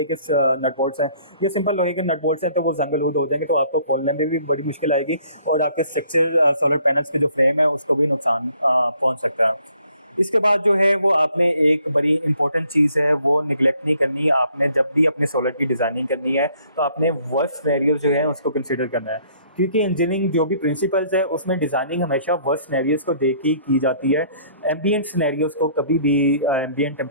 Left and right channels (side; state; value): both; inverted; correlation -0.62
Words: के नट बोल्ट्स हैं या सिंपल लोहे के नट बोल्ट्स हैं तो वो जंग-लूद हो जाएंगे, तो आपको खोलने में भी बड़ी मुश्किल आएगी और आपके स्ट्रक्चर सोलर पैनल्स के जो फ्रेम है उसको भी नुकसान पहुँच सकता है। इसके बाद जो है वो आपने एक बड़ी इंपॉर्टेंट चीज़ है वो निगलेक्ट नहीं करनी। आपने जब भी अपने सोलर की डिज़ाइनिंग करनी है तो आपने वर्स्ट सिनेरियोज जो हैं उसको कंसिडर करना है, क्योंकि इंजीनियरिंग जो भी प्रिंसिपल्स है उसमें डिज़ाइनिंग हमेशा वर्स्ट सिनेरियोज को देख के की जाती है। एम्बिएंट सिनेरियोज को कभी भी, एम्बिएंट